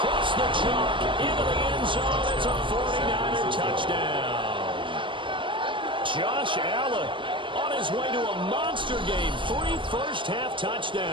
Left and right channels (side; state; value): left; late; 0.24 ms